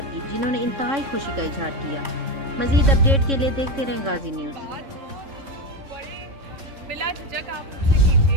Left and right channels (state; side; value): late; left; 3.6 ms